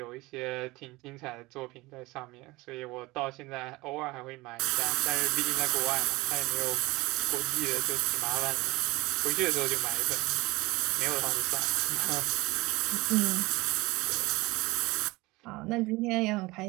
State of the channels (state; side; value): quieter; left; 21.4 dB